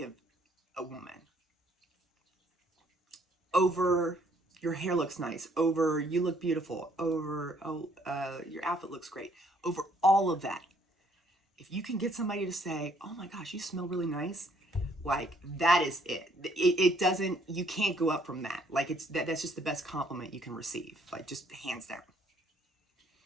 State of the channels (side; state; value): both; normal; correlation 0.64